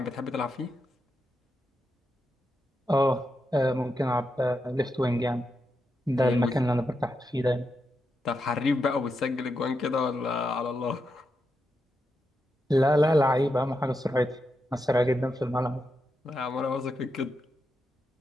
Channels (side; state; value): both; normal; correlation 0.85